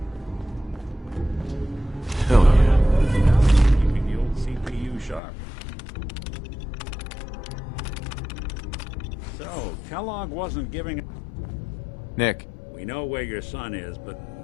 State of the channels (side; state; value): right; drops out; at 5.2 s